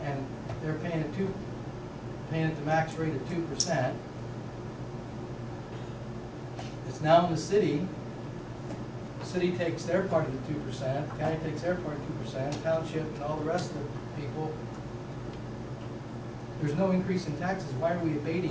and they're paying at the max rate of 2%, it's now in the city. The city takes their part of the 2%, the county takes their part of 2%, township and all the rest of the people. There's no increase in taxes. Why are we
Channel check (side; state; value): both; identical; correlation 1.00